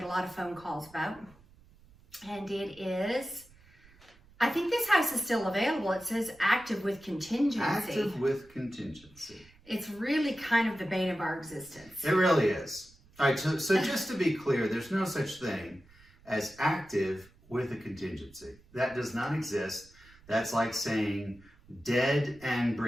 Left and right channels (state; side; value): noise; right; rumble, 26 dB below the sound